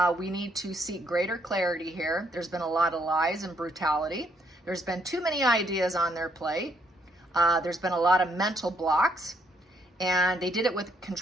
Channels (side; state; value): both; normal; correlation 0.71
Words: We need to seek greater clarity here. There's been a lot of lies and brutality. There's been too many ideas on their plate. There's been a lot of mental blocks, and they did it with